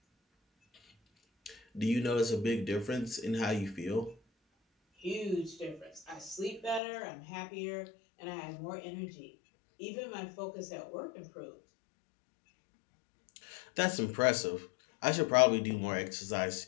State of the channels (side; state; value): right; drops out; at 6.8 s